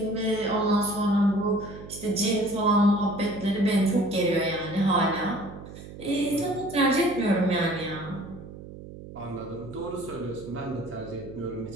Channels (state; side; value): noise; right; hum, 14 dB below the sound